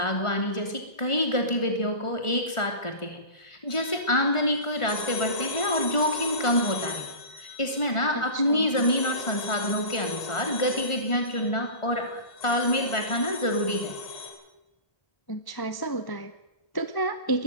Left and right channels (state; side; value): late; right; 1.4 ms